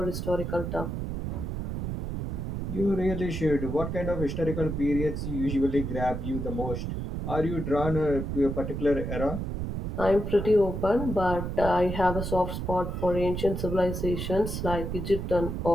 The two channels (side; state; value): right; noise; rumble, 4 dB below the sound